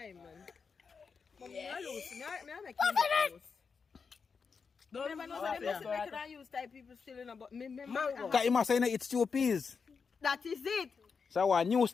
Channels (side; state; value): right; quieter; 5.5 dB